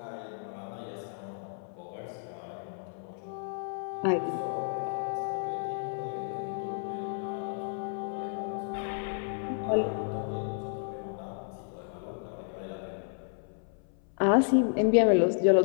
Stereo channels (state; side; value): silent; right; 56 dB below the other